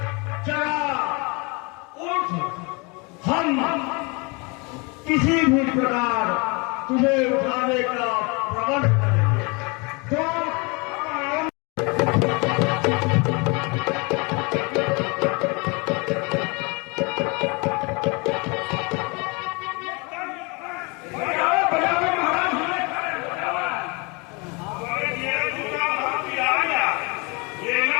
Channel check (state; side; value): quieter; right; 29.4 dB